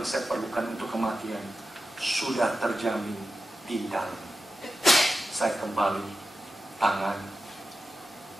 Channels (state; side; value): normal; both; correlation 0.92